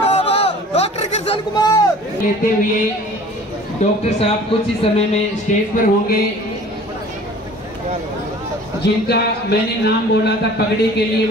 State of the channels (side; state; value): both; normal; correlation 0.47